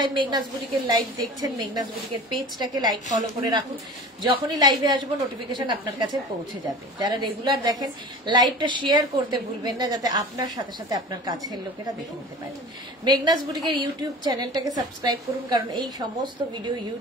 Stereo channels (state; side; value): normal; both; correlation 0.38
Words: মেঘনাস বুটিকের লাইভ দেখছেন, মেঘনাস বুটিকের পেজটাকে লাইক ফলো করে রাখুন, যখনই লাইভে আসবো নোটিফিকেশন আপনার কাছে পৌঁছে যাবে। যারা রেগুলার দেখেন, লাইভটা শেয়ার করতে ভুলবেন না, যাতে আপনার সাথে সাথে আপনার কাছের লোকেরা দেখে নিতে পারে। মেঘনাস বুটিকের ইউটিউব চ্যানেলটাকে সাবস্ক্রাইব করুন, কারণ এই সমস্ত ভিডিও